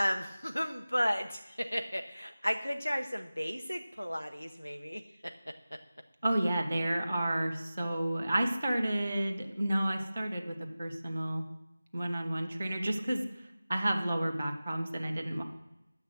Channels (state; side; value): inverted; both; correlation -0.96